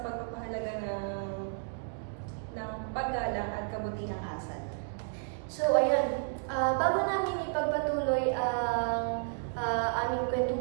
pagpapahalaga ng paggalang at kabutihang asal. So, ayun. Bago namin ipagpatuloy ang aming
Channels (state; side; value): silent; left; digital silence